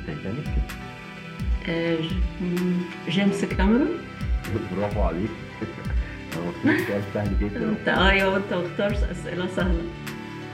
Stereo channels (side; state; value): both; identical; correlation 1.00